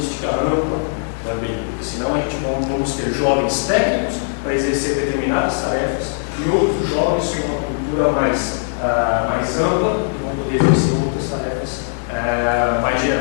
ampla, também, porque senão a gente vamos ter jovens técnicos para exercer determinadas tarefas e outros jovens com uma cultura mais ampla que vão poder exercer outras tarefas mais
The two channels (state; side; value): silent; right; digital silence